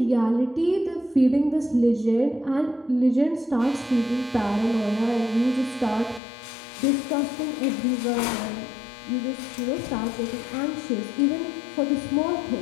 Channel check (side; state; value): right; drops out; at 6.2 s